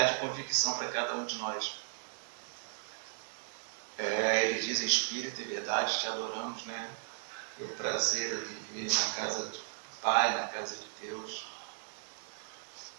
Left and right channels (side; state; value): left; silent; 54 dB below the other